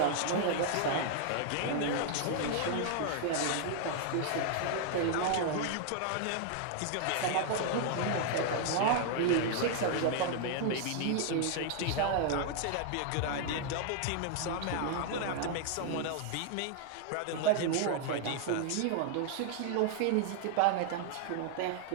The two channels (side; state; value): both; different; correlation 0.00